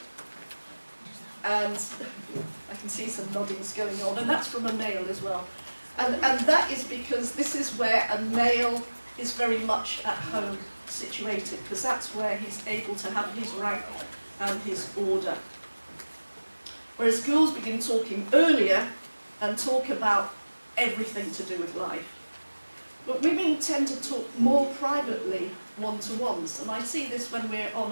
And I can see some noddings going on, and that's from a male as well. And that is because this is where a male is very much at home situated, because that's where he's able to have his rank and his order. Whereas girls begin talking earlier and talk about everything to do with life. But women tend to talk more privately, one-to-ones, and I see this when we're on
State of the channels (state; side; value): inverted; both; correlation -1.00